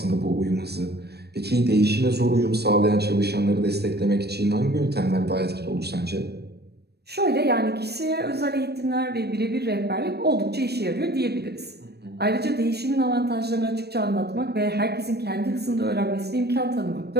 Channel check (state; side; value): late; left; 0.47 ms